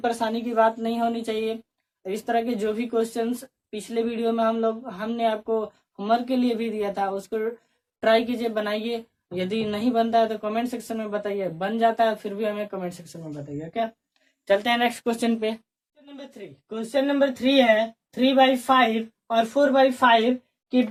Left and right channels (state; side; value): identical; both; correlation 1.00